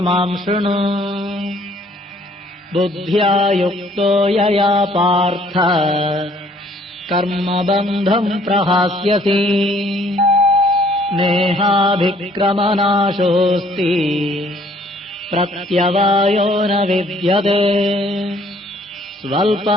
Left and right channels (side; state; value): both; normal; correlation 0.60